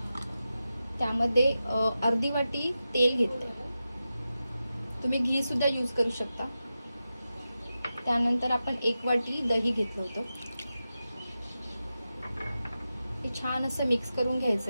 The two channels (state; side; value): inverted; both; correlation -0.92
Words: त्यामध्ये अर्धी वाटी तेल घेतले, तुम्ही घी सुद्धा यूज करू शकता. त्यानंतर आपण 1 वाटी दही घेतलं होतं, हे छान असं मिक्स करून